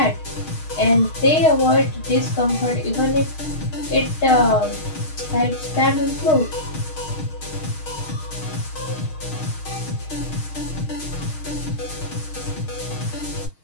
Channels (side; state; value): right; late; 6.4 ms